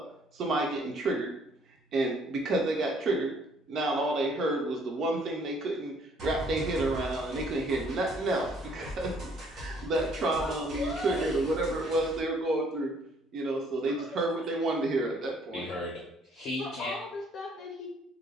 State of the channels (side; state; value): both; normal; correlation 0.63